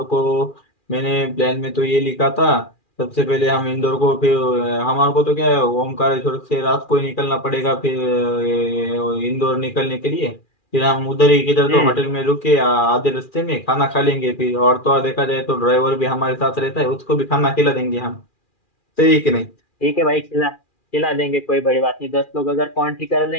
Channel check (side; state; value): right; late; 2.4 ms